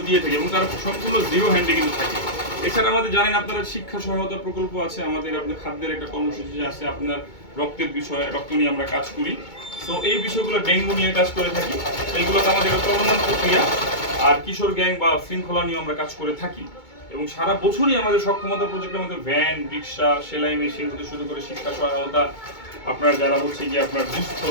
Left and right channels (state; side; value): late; right; 2.2 ms